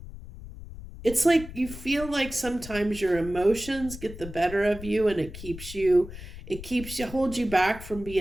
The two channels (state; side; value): noise; left; rumble, 13 dB below the sound